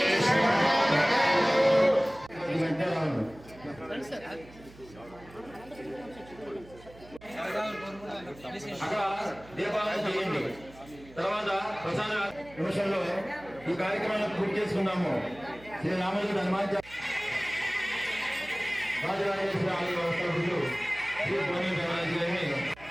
అక్కడ దీపాలను చేయండి. తర్వాత ప్రసాద నిమిషంలో ఈ కార్యక్రమాన్ని పూర్తి చేసుకున్నాము. శ్రీ రామజీ హనుమాన్ రాజరాజేశ్వరి ఆలయ వ్యవస్థలు శ్రీ భోని దేవరాజు గారిని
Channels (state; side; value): noise; right; hum, 21 dB below the sound